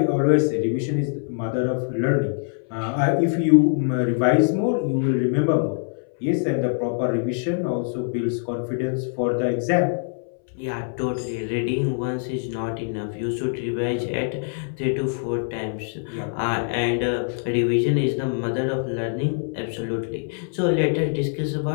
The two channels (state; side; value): silent; right; 63 dB below the other